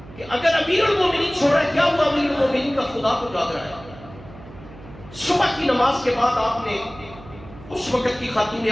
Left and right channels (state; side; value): noise; right; hum, 19 dB below the sound